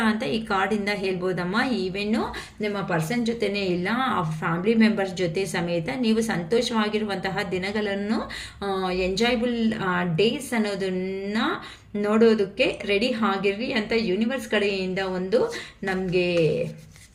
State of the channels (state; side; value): identical; both; correlation 1.00